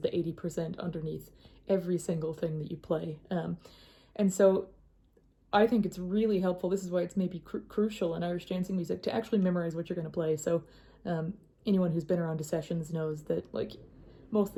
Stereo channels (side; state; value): both; identical; correlation 1.00